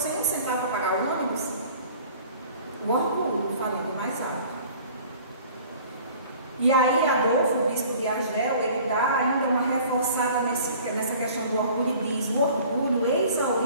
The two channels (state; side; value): inverted; both; correlation -0.48